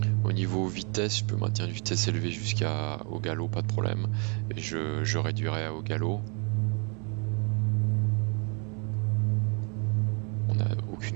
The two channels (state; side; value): quieter; left; 35.6 dB